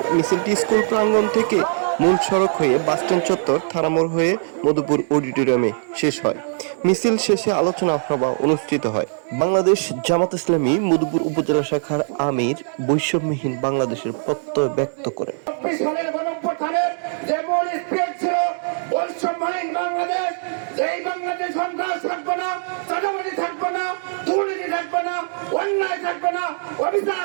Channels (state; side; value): silent; left; digital silence